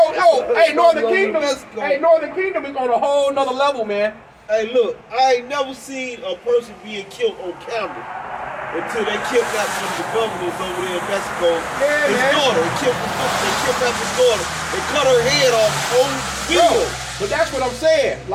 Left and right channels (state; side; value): identical; both; correlation 1.00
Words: Hey, Northern Kingdom. Hey, Northern Kingdom is on a whole nother level, man. Hey, look, I ain't never seen a person being killed on camera. Until they kidnapped one of the governors over there in Mexico, his daughter. They kidnapped his daughter. They cut her head off on video. But that's what I'm saying.